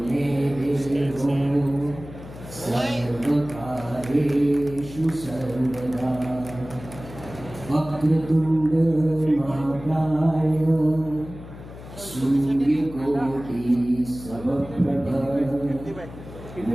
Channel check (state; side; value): noise; left; hum, 15 dB below the sound